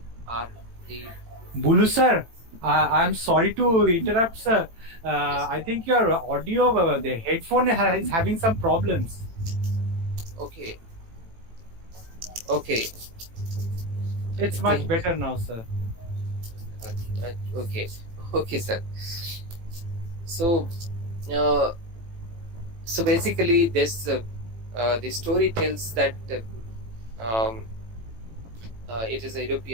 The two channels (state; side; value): late; left; 18 ms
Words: are the Bulu sir, I'm sorry to interrupt, sir. I think your audio, the headphone is having some problems. okay. It's much better now, sir. Okay, sir. So, so basically, this the story tells that it is a